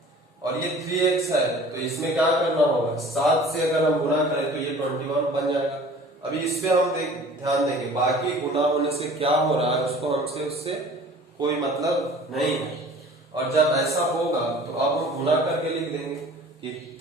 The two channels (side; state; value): both; normal; correlation 0.46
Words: और ये 3X है तो इसमें क्या करना होगा? 7 से अगर हम गुणा करें तो ये 21 बन जाएगा। अभी इस पे हम ध्यान देंगे, बाकी गुणा होने से क्या हो रहा है उसको हमसे उससे कोई मतलब नहीं है। और जब ऐसा होगा तो अब हम गुणा करके लिख देंगे कि